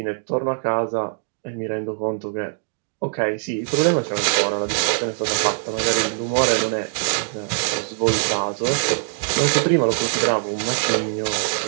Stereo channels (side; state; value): left; silent; digital silence